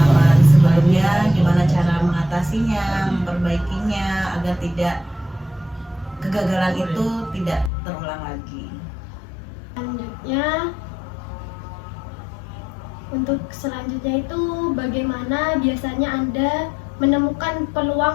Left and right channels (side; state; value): right; drops out; at 7.7 s